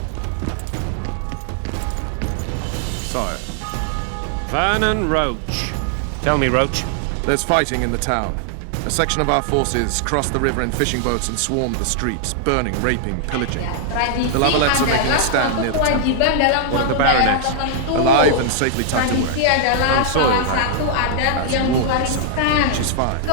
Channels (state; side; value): different; both; correlation -0.01